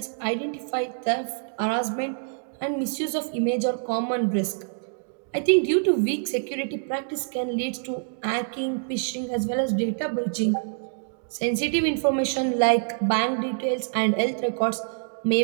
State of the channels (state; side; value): silent; left; digital silence